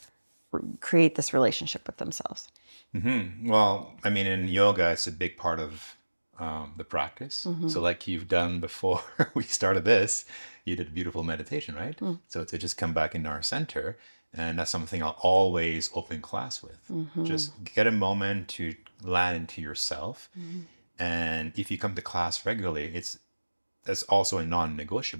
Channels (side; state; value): both; inverted; correlation -1.00